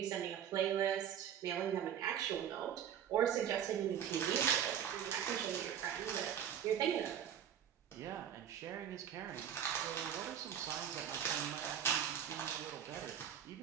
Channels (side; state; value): left; quieter; 9.3 dB